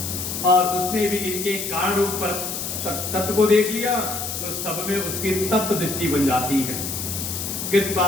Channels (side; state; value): left; noise; hiss, 4 dB below the sound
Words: और उसमें भी इनके कारण रूप पर तत्व को देख लिया तो सब में उसकी तत्व दृष्टि बन जाती है। कृत्वा